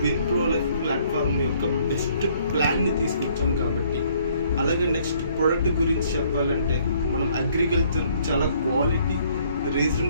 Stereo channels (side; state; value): both; inverted; correlation -0.63